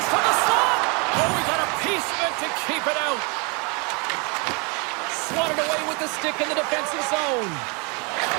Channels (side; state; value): left; quieter; 32.2 dB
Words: from the slot. Oh, we got a piece of it to keep it out. Swatted away with the stick in the defensive zone.